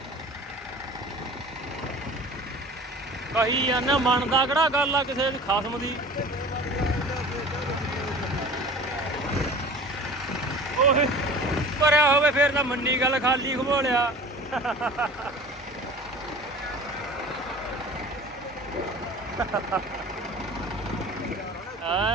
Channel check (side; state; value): both; normal; correlation 0.41